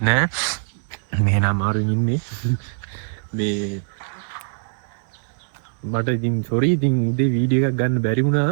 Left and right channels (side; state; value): left; silent; digital silence